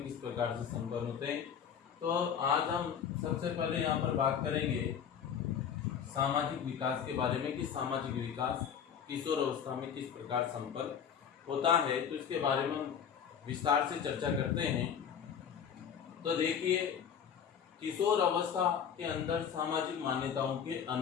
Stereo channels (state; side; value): quieter; right; 7.9 dB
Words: किस प्रकार से संपन्न होते हैं। तो आज हम सबसे पहले यहाँ पर बात करेंगे सामाजिक विकास के बारे में कि सामाजिक विकास किशोर अवस्था में किस प्रकार संपन्न होता है। तो इसके बारे में हम विस्तार से चर्चा करते हैं। तो देखिए, किशोर अवस्था के अंदर सामाजिक मान्यताओं के